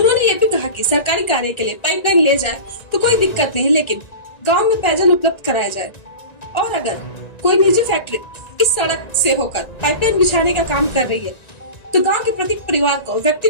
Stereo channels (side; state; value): right; late; 1.9 ms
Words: ये भी कहा कि सरकारी कार्य के लिए पाइपलाइन ले जाए तो कोई दिक्कत नहीं, लेकिन गाँव में पेयजल उपलब्ध कराया जाए। और अगर कोई निजी फैक्ट्री इस सड़क से होकर पाइपलाइन बिछाने का काम कर रही है तो गांव के प्रत्येक परिवार को, व्यक्ति